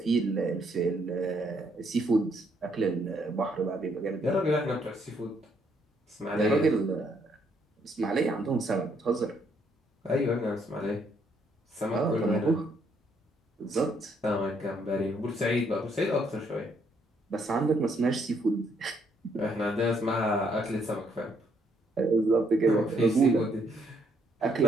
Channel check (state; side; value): normal; both; correlation 0.71